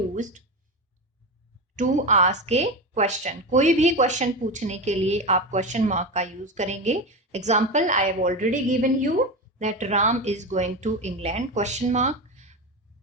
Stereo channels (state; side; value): normal; both; correlation 0.20